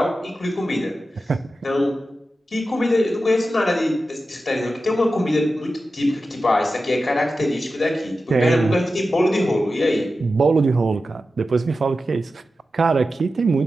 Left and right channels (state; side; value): normal; both; correlation 0.92